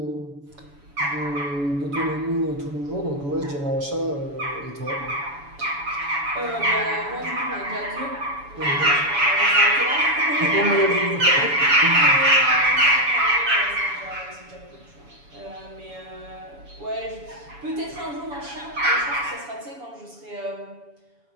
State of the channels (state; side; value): late; left; 7.0 ms